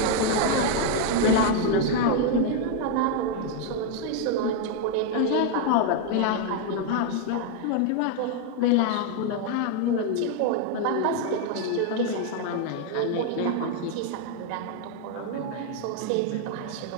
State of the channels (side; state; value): both; different; correlation 0.00